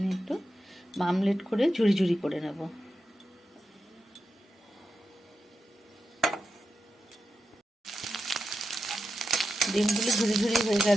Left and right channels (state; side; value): normal; both; correlation 0.89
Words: একটু আমলেট করে ঝুরি ঝুরি করে নেব। ডিমগুলো ঝুরি ঝুরি হয়ে